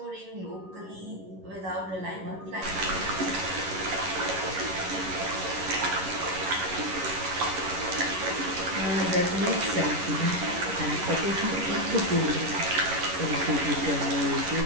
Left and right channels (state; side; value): late; left; 11 ms